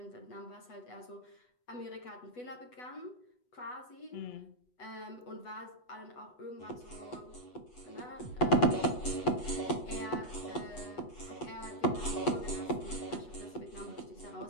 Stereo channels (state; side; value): late; right; 8.1 ms